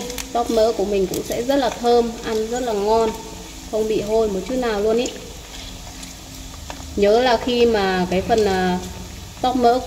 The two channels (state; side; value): identical; both; correlation 1.00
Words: Tóp mỡ của mình cũng sẽ rất là thơm, ăn rất là ngon, không bị hôi một chút nào luôn ý. Nhớ là khi mà cái phần tóp mỡ